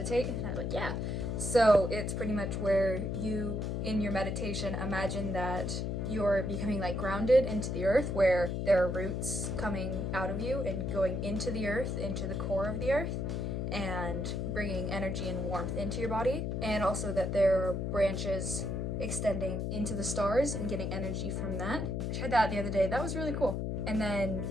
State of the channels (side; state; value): left; noise; hum, 1 dB below the sound